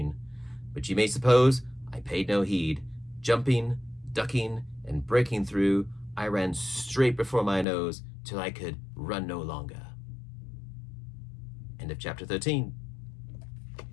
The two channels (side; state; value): right; drops out; at 7.7 s